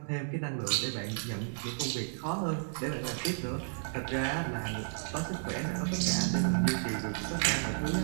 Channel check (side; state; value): left; silent; 56 dB below the other